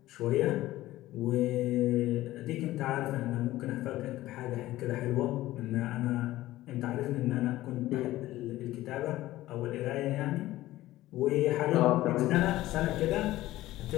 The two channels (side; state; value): right; quieter; 16.1 dB